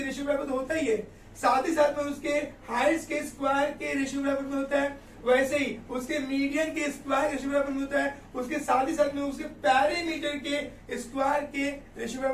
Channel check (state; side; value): identical; both; correlation 1.00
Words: रेशियो बराबर होता ही है, साथ ही साथ में उसके हाइट्स के स्क्वायर के रेशियो बराबर में होता है, वैसे ही उसके मीडियन के स्क्वायर रेशियो बराबर में होता है, उसके साथ ही साथ में उसके पैरामीटर के स्क्वायर के रेशियो